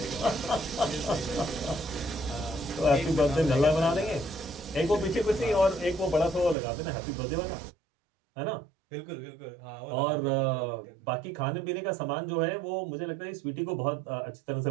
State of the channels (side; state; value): left; drops out; at 6.6 s